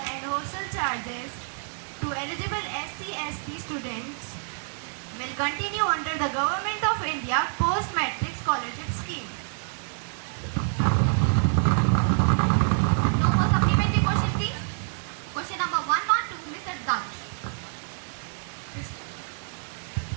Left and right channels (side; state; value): left; silent; 60 dB below the other